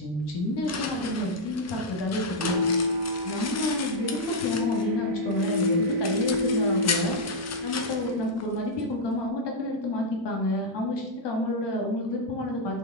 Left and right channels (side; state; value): both; normal; correlation -0.03